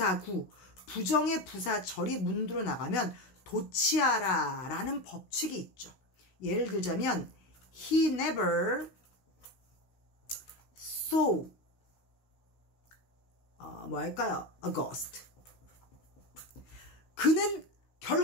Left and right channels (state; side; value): late; right; 16 ms